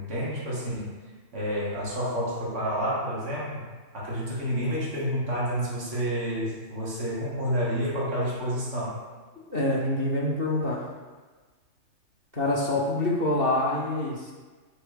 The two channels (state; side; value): late; left; 2.7 ms